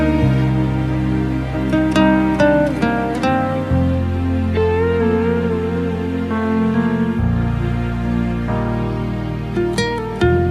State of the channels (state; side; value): identical; both; correlation 1.00